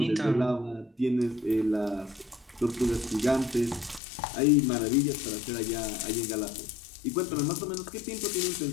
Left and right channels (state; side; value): drops out; right; at 4.0 s